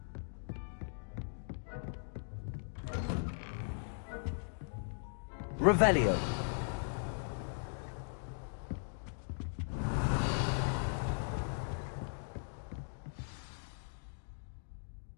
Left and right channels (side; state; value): right; silent; digital silence